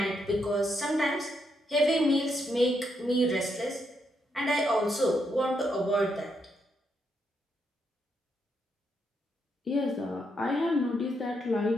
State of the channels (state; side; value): normal; both; correlation 0.79